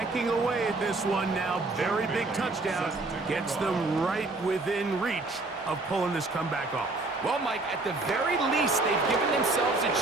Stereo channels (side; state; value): left; quieter; 3.2 dB